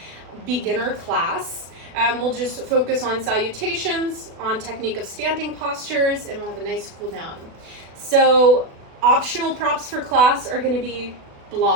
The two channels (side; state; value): left; late; 36 ms